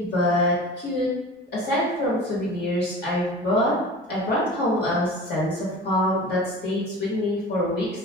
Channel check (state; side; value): normal; both; correlation 0.37